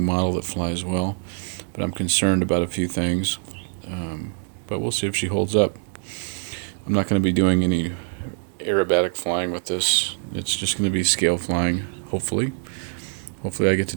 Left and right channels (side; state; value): left; silent; 63 dB below the other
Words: model that flies well, but I'm concerned about a few things. But we'll see if she holds up. I'm not going to be doing any aerobatic flying with this. It's just going to be scale flying, hopefully. Hopefully I get to